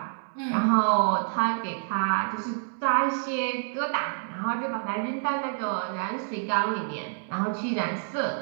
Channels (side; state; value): left; silent; digital silence